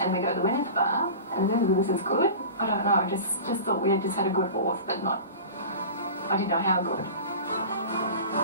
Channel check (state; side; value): inverted; both; correlation -0.35